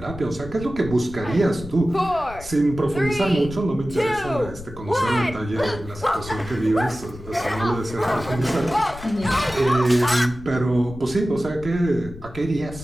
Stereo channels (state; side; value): noise; left; rumble, 15 dB below the sound